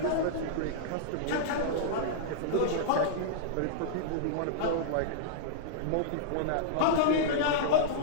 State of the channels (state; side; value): different; both; correlation -0.02